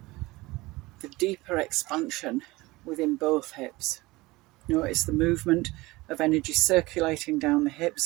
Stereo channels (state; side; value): quieter; left; 21.0 dB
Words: the deeper expansion within both hips. Notice the movement of energy circulating down the